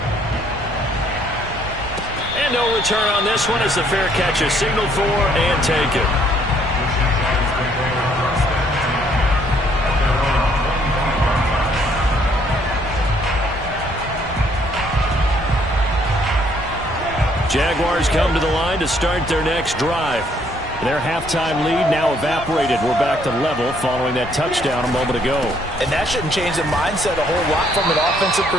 And no return on this one as the fair catch is signaled for and taken. Jaguars come to the line to start their next drive. Their halftime lead now evaporated. We're back to level following that touchdown a moment ago. And that shouldn't change the mindset a whole lot from an offensive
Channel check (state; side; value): normal; both; correlation 0.66